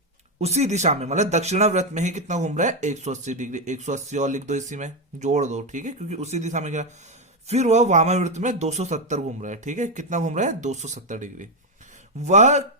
उसी दिशा में, मतलब दक्षिणाव्रत में ही कितना घूम रहा है? 180 डिग्री। 180 और लिख दो, इसी में जोड़ दो। ठीक है, क्योंकि उसी दिशा में क्या, फिर वह वामाव्रत में 270 घूम रहा है। ठीक है, कितना घूम रहा है? 270 डिग्री। वह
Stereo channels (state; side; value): normal; both; correlation 0.06